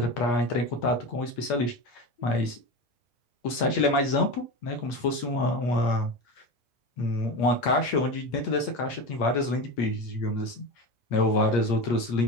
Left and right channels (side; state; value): right; late; 8.5 ms